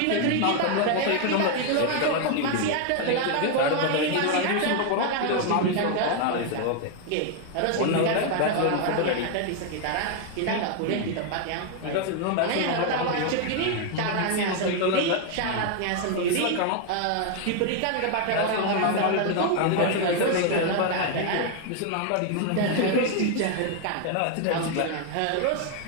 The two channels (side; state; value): both; different; correlation 0.00